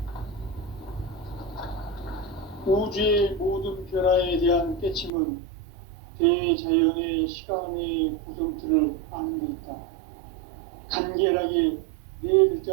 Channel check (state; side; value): drops out; left; at 5.1 s